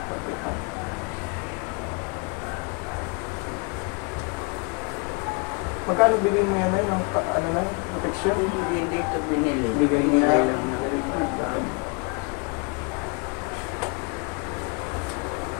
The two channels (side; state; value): right; quieter; 33.4 dB